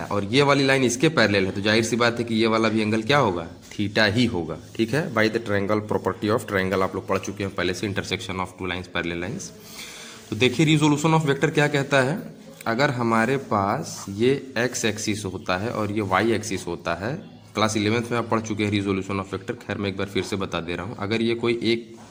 और ये वाली लाइन इसके पैरेलल है, तो जाहिर सी बात है कि ये वाला भी एंगल क्या होगा, थीटा ही होगा। ठीक है, by the triangle property of triangle आप लोग पढ़ चुके हैं पहले से, intersection of two lines parallel lines. तो देखिए रिजोल्यूशन ऑफ वेक्टर क्या कहता है, अगर हमारे पास ये x एक्सिस होता है और ये y एक्सिस होता है, क्लास 11th में आप पढ़ चुके हैं रिजोल्यूशन ऑफ वेक्टर, खैर मैं एक बार फिर से बता दे रहा हूँ। अगर ये कोई एक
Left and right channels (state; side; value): identical; both; correlation 1.00